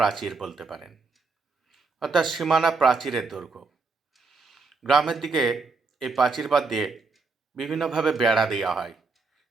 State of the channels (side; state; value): left; quieter; 4.2 dB